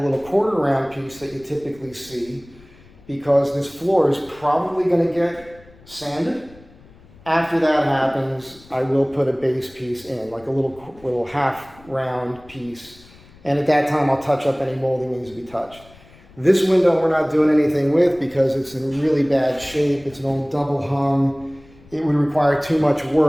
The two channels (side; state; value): left; noise; rumble, 25 dB below the sound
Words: little quarter round piece that you typically see because this floor is probably going to get sanded. After that happens, I will put a base piece in, like a little half round piece. And at that time, I'll touch up any molding that needs to be touched. This window we're not doing anything with because it's in really bad shape. It's an old double hung. It would require too much